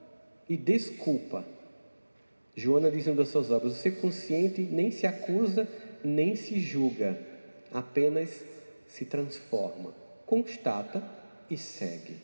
e desculpa. Joana diz em uma das suas obras: o ser consciente nem se acusa, nem se julga. Apenas se transforma. Constata e segue.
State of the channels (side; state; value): both; inverted; correlation -1.00